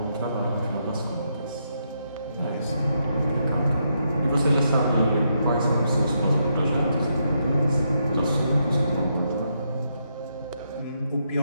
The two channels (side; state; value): both; inverted; correlation -0.80